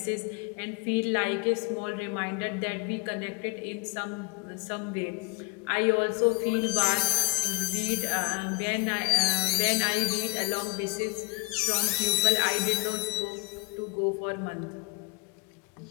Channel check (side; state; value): right; quieter; 24.3 dB